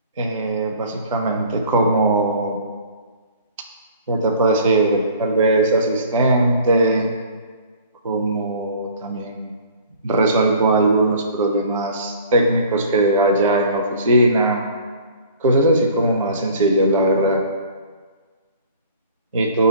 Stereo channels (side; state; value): both; inverted; correlation -0.49